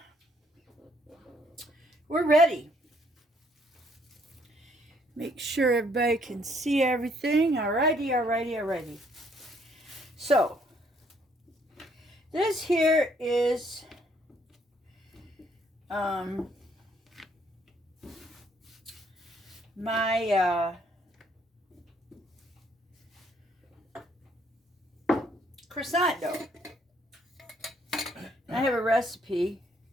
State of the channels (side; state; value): both; normal; correlation 0.67